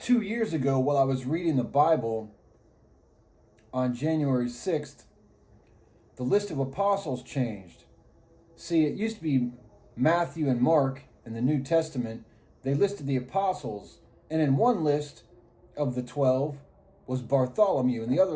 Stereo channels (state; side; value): identical; both; correlation 1.00